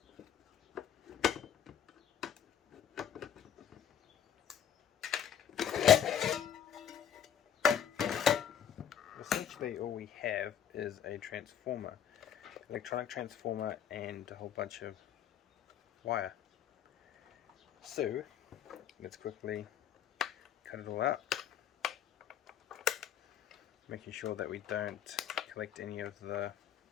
Essentially all we have is a transformer, electronic transformer, and a whole bunch of wire. So let's quickly cut it all out, making sure that we don't collect any of the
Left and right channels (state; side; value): quieter; right; 9.2 dB